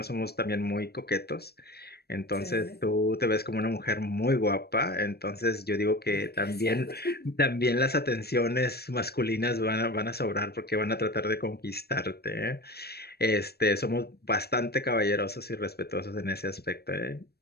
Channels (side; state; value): right; late; 0.47 ms